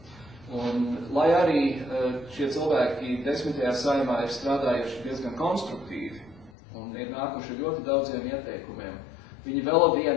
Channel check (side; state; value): right; drops out; at 6.5 s